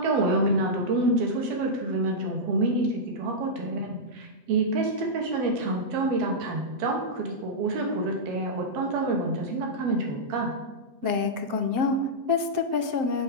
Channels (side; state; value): left; late; 7.7 ms